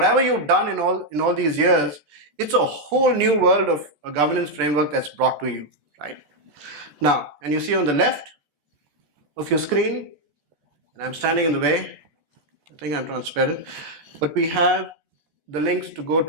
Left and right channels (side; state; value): left; late; 14 ms